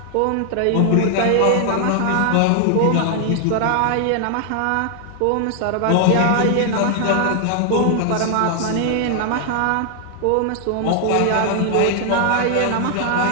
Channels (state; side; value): different; both; correlation 0.00